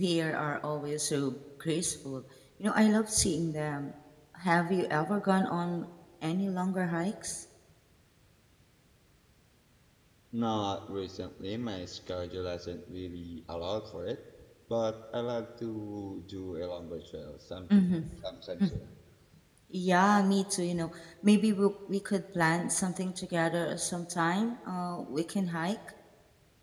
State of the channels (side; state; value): both; identical; correlation 1.00